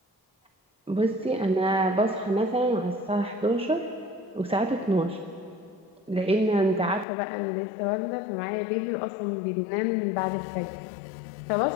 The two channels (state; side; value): drops out; right; at 7.1 s